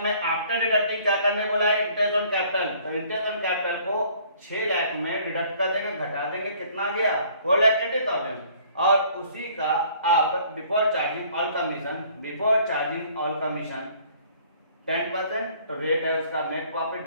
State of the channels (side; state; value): both; inverted; correlation -0.57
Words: में आफ्टर डिडक्टिंग क्या करने बोला है, इंटरेस्ट ऑन कैपिटल, तो इंटरेस्ट ऑन कैपिटल को 6 लाख में डिडक्ट कर देंगे, घटा देंगे, कितना गया 4,80,000, और उसी का आप before charging all commission, before charging all commission 10%, तो रेट है उसका नेट प्रॉफिट